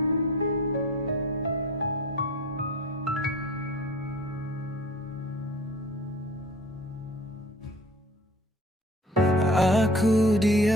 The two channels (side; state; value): both; normal; correlation 0.44